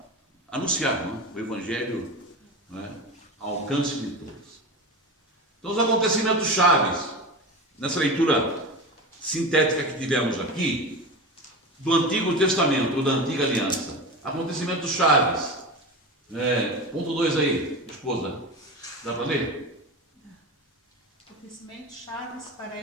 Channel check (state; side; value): normal; both; correlation 0.26